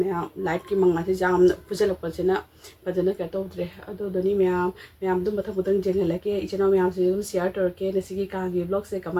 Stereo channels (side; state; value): both; identical; correlation 1.00